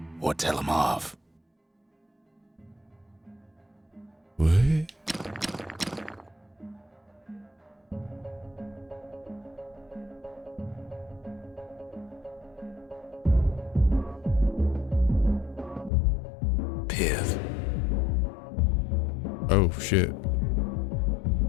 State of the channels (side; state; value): right; drops out; at 15.9 s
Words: Or tell them off? What? Pith. Oh shit.